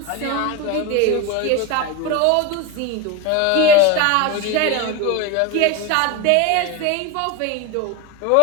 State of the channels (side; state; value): both; different; correlation 0.03